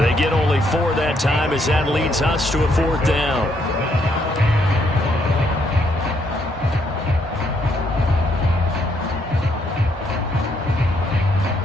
get only 4 that time as that leads us to a 4th down.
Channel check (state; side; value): normal; both; correlation 0.72